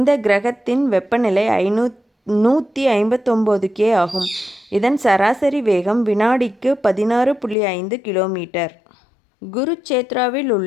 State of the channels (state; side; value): drops out; right; at 7.6 s